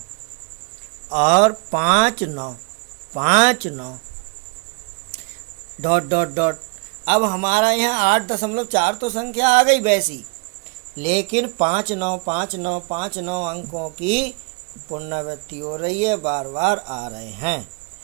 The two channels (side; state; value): left; quieter; 30.9 dB